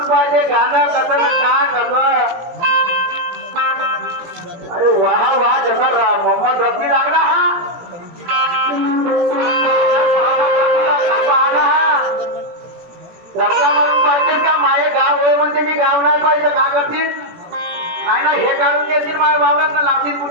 पाहिजे गाणं कसं ना कसं. अरे वाह वाह, जसा मोहम्मद रफी लागला हा. रस्ता म्हणून पाहिजे का? माये गाव होय म्हणते मी गाव नाही पाहिजे का करतील? नाही ना, हे काढून घेतील माझ्या वावरात लावतील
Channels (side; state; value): left; late; 17 ms